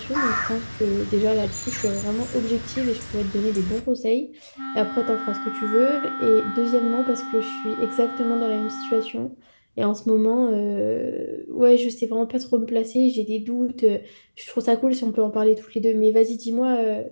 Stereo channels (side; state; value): both; inverted; correlation -1.00